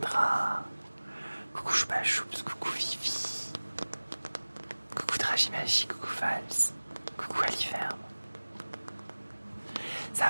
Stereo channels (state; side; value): inverted; both; correlation -1.00